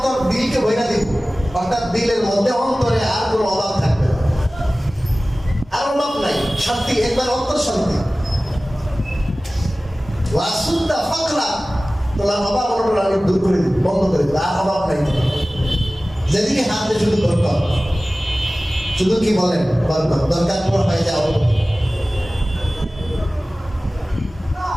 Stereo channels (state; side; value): normal; both; correlation 0.97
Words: দিলকে ভরা দিব। অর্থাৎ দিলের মধ্যে, অন্তরে আর কোনো অভাব থাকবে না, আর অভাব নাই, শান্তি, একবার অন্তর শান্তি। ওয়াসুদ্দা ফাকরা, তোমার অভাব অনটন আমি দূর করে দিব, বন্ধ করে দিব, আর অভাব নাই। যেদিকে হাত দিয়ে শুধু বরকত, শুধু কি বলেন বরকত, দরকার পর হয়ে যাও।